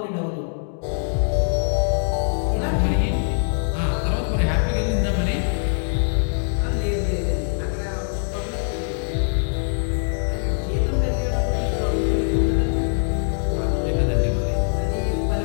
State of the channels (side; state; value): right; silent; digital silence